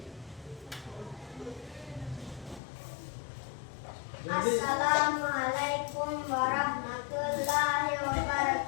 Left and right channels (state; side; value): drops out; right; at 2.6 s